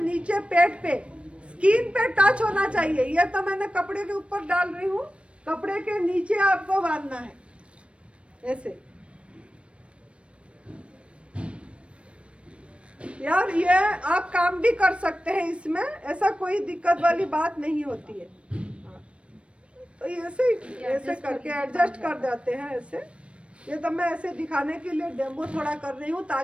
पेट पे, स्किन पे टच होना चाहिए। ये तो मैंने कपड़े के ऊपर डाल रही हूँ, कपड़े के नीचे आपको बांधना है ऐसे। यार ये आप काम भी कर सकते हैं इसमें, ऐसा कोई दिक्कत वाली बात नहीं होती है। तो ऐसे करके एडजस्ट कर देते हैं ऐसे। ये तो मैं ऐसे दिखाने के लिए डेमो थोड़ा कर रही हूँ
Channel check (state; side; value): late; left; 0.060 ms